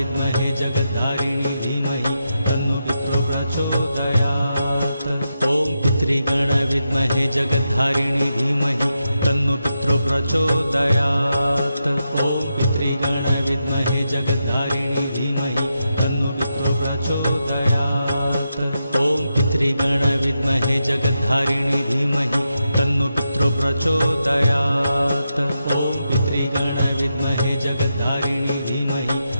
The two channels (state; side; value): inverted; both; correlation -0.86